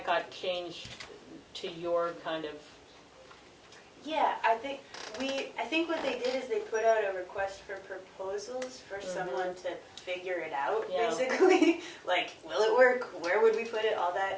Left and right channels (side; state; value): both; identical; correlation 1.00